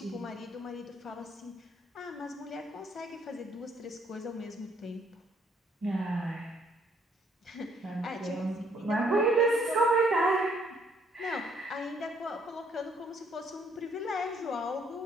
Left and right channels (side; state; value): both; normal; correlation 0.66